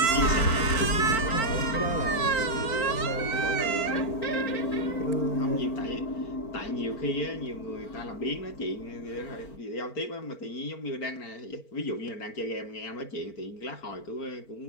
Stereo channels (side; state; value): right; late; 4.4 ms